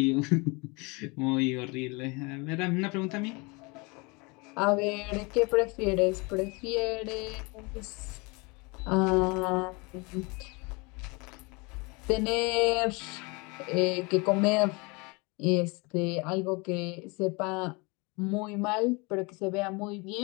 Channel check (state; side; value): quieter; right; 28.2 dB